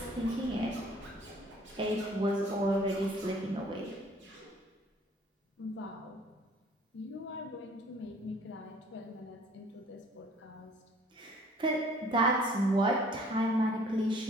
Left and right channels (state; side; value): normal; both; correlation 0.54